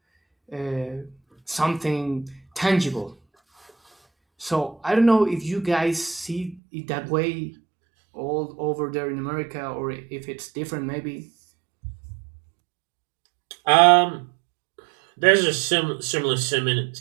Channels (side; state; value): left; drops out; at 6.6 s